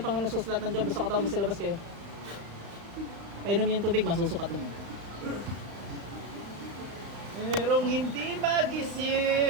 Panginoon susulat ng job? Gusto ka tawag, magsilabas kayo. Painom yung tubig, masusukat mo. Merong hindi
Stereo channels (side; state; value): left; late; 35 ms